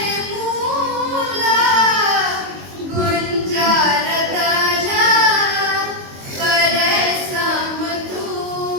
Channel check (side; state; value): left; late; 22 ms